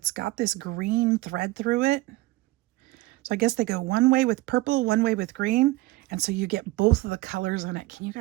got this green thread through it. So I guess they go one way with purple, one way with green. And so you get both of the colors in it. Can you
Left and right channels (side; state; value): left; quieter; 19.4 dB